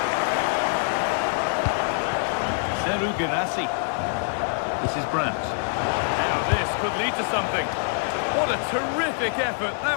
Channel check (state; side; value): silent; right; digital silence